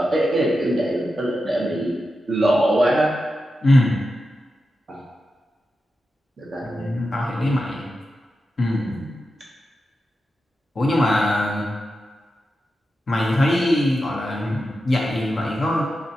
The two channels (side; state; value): both; normal; correlation 0.90